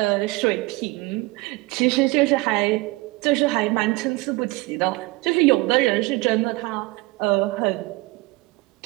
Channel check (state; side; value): quieter; left; 22.6 dB